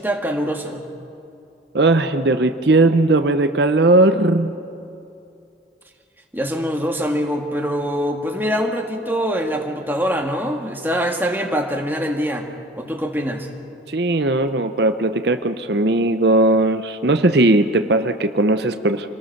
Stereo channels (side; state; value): both; normal; correlation 0.39